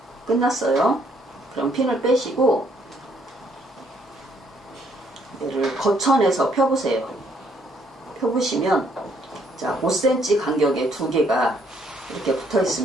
끝났어요. 그럼 핀을 빼시고 얘를 거천에서 펴보세요. 펴보시면, 자, 5cm 간격에 두 개가 이렇게 붙어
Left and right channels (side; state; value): both; normal; correlation 0.68